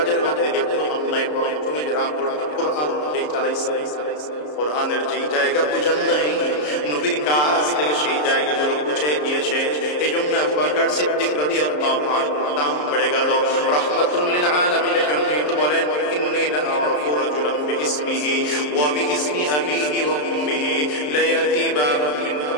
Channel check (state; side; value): late; right; 33 ms